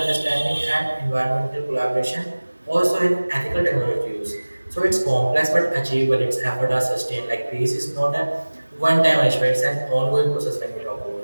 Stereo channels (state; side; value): inverted; both; correlation -1.00